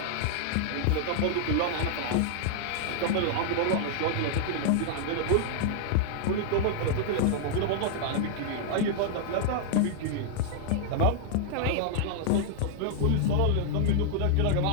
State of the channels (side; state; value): both; different; correlation -0.01